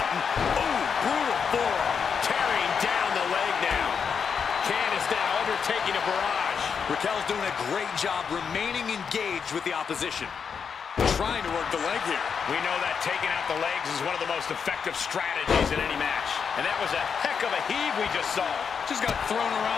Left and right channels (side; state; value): right; quieter; 6.4 dB